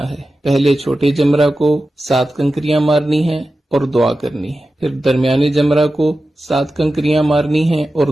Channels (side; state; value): both; normal; correlation 0.93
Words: ہے۔ پہلے چھوٹے جمرہ کو 7 کنکریاں مارنی ہیں اور دعا کرنی ہے، پھر درمیانے جمرہ کو 7 کنکریاں مارنی ہیں اور